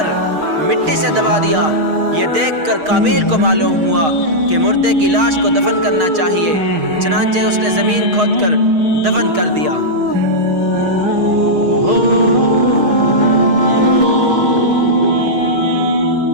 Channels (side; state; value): left; late; 6.4 ms